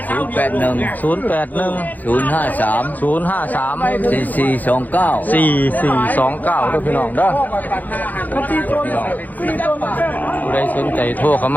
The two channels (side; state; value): right; late; 0.082 ms